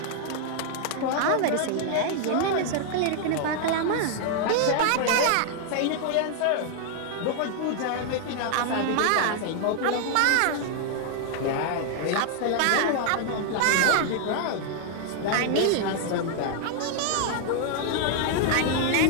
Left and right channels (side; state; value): both; different; correlation 0.00